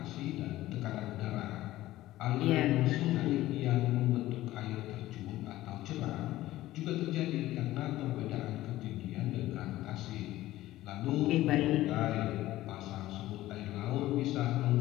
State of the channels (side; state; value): right; quieter; 15.8 dB